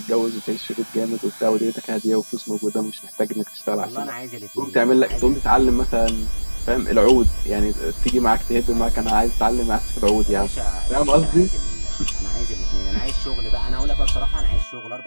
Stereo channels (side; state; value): both; inverted; correlation -1.00